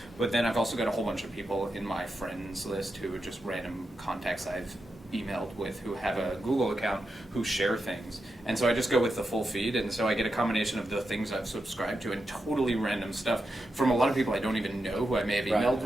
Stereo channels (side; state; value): both; normal; correlation 0.87